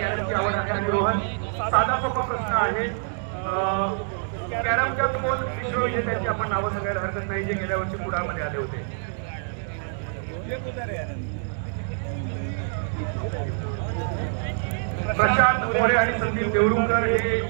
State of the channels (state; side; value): silent; left; 61 dB below the other